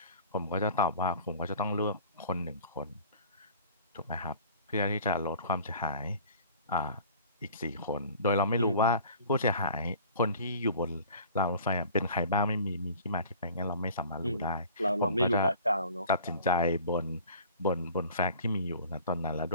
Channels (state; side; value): inverted; both; correlation -0.47